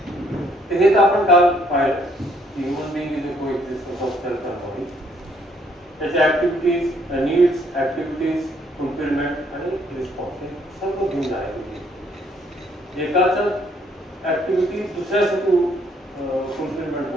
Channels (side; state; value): both; normal; correlation 0.67